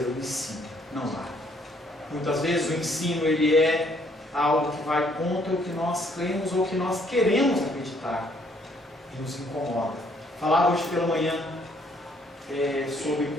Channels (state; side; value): normal; both; correlation 0.66